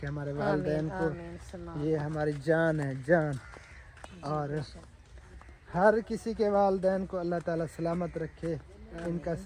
हमारे वालिदैन को। आमीन सलाम। ये हमारी जान है, जान। और हर किसी के वालिदैन को अल्लाह ताला सलामत रखे, इनका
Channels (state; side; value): identical; both; correlation 1.00